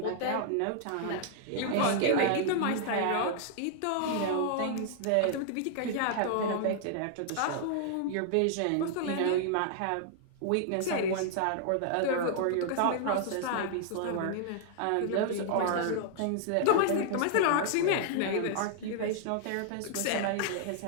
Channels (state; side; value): different; both; correlation -0.01